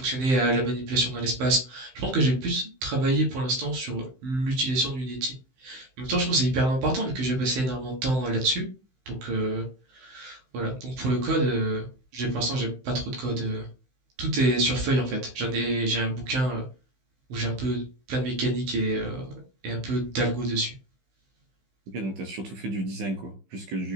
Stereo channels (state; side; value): late; left; 15 ms